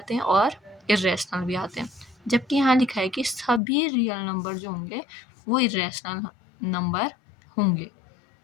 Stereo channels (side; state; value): right; drops out; at 3.6 s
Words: हैं और इरेशनल भी आते हैं, जबकि यहाँ लिखा है कि सभी रियल नंबर जो होंगे वो इरेशनल नंबर होंगे,